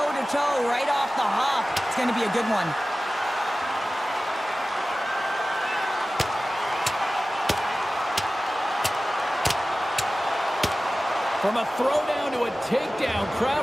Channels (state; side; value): normal; both; correlation 0.96